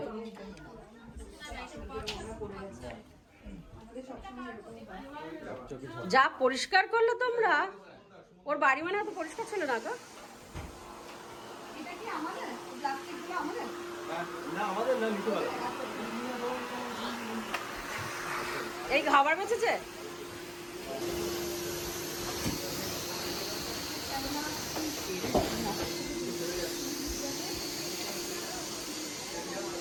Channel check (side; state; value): both; identical; correlation 1.00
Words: যা পরিষ্কার করলো তোমরা, ওর বাড়ি মানে এত পরিষ্কার ছিল না তো। এই খাবার বেঁচেছে।